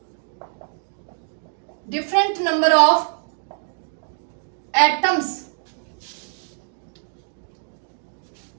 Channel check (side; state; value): left; silent; digital silence